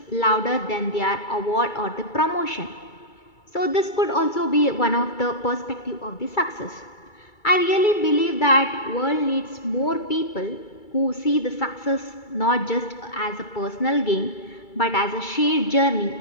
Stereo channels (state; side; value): late; right; 2.3 ms